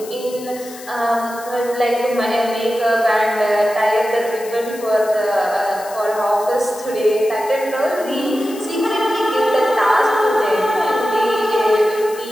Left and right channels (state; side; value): noise; left; hiss, 17 dB below the sound